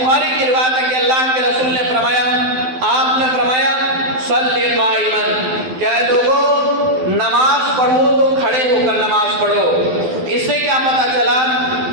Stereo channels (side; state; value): left; late; 12 ms